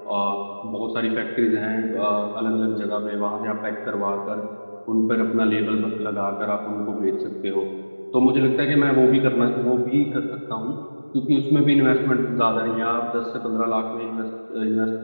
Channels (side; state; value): both; inverted; correlation -1.00